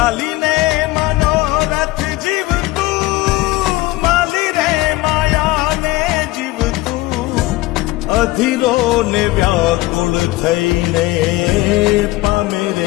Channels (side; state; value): right; quieter; 18.8 dB